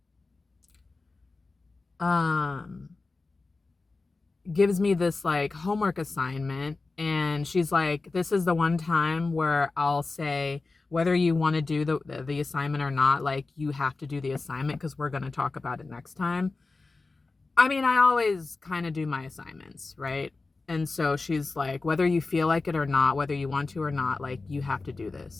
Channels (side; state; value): right; quieter; 3.7 dB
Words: gives me this like homework assignment, and she's like, this is the one time where I'll say whether you want to do the assignment or not, like you have to do the assignment because we're going to talk about it next time. I mean, I always kind of do my assignments, right? And so she's like, whether you feel like it or not, whether you want to or not, like you have to do